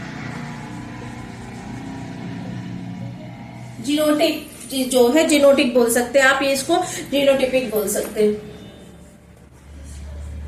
जीनोटिक जो है, जीनोटिक बोल सकते हैं आप, ये इसको जीनोटिपिक बोल सकते हैं।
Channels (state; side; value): identical; both; correlation 1.00